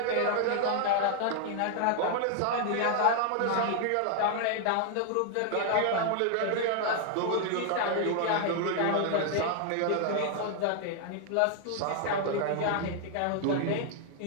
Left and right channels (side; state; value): both; different; correlation 0.00